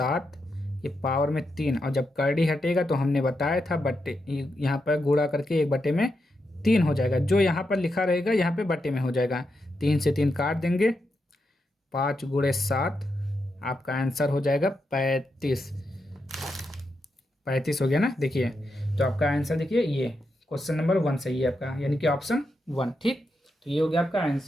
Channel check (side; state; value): both; normal; correlation 0.85